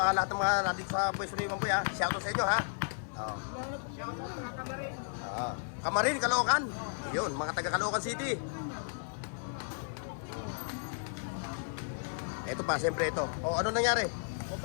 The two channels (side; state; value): right; silent; 55 dB below the other